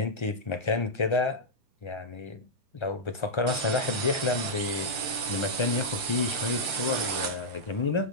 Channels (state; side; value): late; right; 1.3 ms